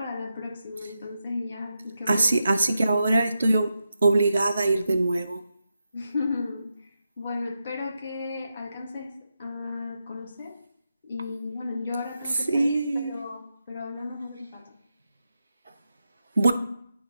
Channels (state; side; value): inverted; both; correlation -0.87